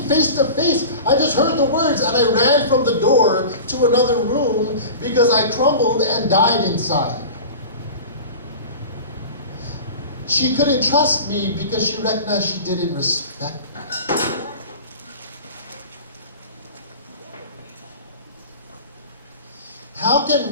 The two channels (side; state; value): both; inverted; correlation -0.35